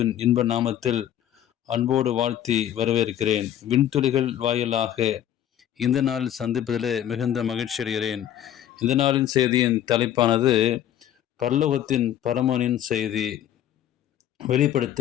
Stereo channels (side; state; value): right; quieter; 11.2 dB